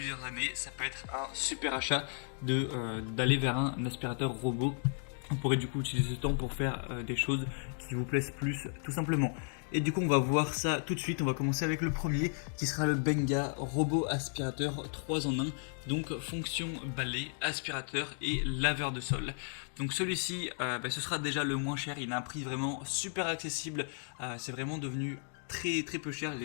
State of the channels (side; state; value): right; silent; 55 dB below the other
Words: années, ça peut être un super achat d'aller vers un aspirateur robot. On pourrait du coup utiliser ce temps pour faire des choses qui vous plaisent plus tout simplement. Et du coup on va voir ça tout de suite, on va commencer avec le premier qui sera le Benga robot aspirateur 3 en 1. Donc fonction balai, aspirateur et laveur de sol. Donc celui-ci ce sera déjà le moins cher, il a un prix vraiment super accessible, c'est vraiment devenu très peu cher